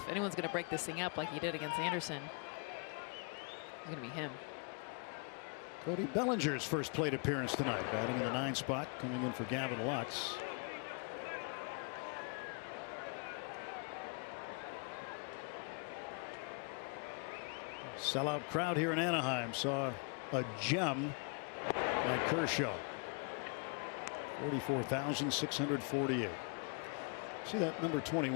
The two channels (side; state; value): right; quieter; 37.3 dB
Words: anyone's going to break this thing up like he did against Anderson, it's going to be him. Cody Bellinger's first plate appearance tonight, batting in the 9 spot, coming in for Gavin Lux. Sellout crowd here in Anaheim saw a gem by Kershaw. 44,648. See that number